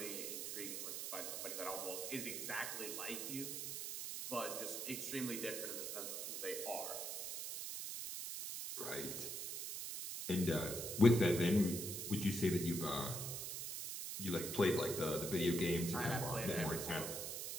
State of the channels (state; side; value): noise; right; hiss, 4 dB below the sound